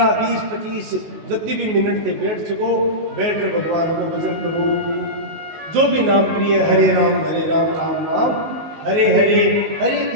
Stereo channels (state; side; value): late; left; 19 ms